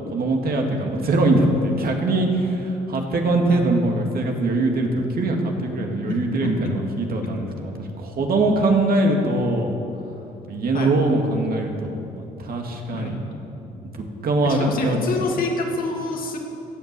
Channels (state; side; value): normal; both; correlation 0.60